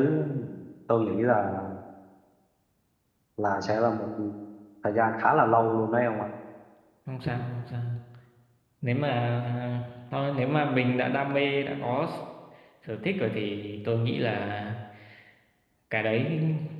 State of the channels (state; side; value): identical; both; correlation 1.00